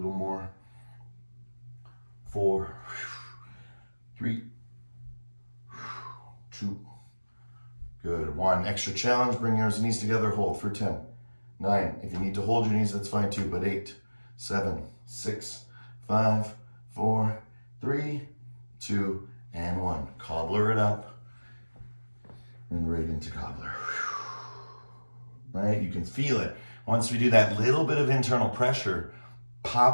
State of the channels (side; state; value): both; inverted; correlation -1.00